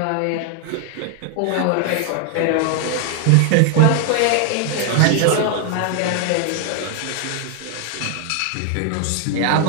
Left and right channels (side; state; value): both; different; correlation 0.00